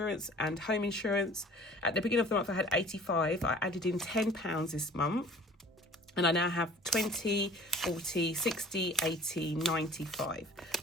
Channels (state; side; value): normal; both; correlation 0.48